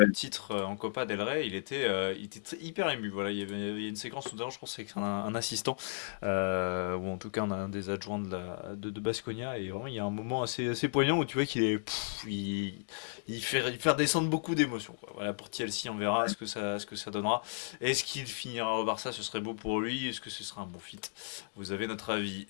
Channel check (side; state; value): right; silent; digital silence